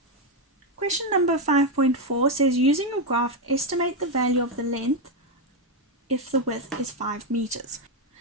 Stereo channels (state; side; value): normal; both; correlation 0.05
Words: question number 5.4 says, using a graph, estimate the value of the length if the width is 5 meters.